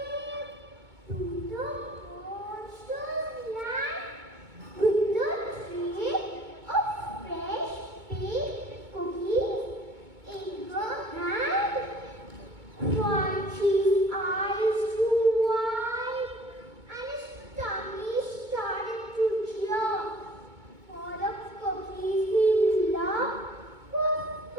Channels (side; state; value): left; late; 2.2 ms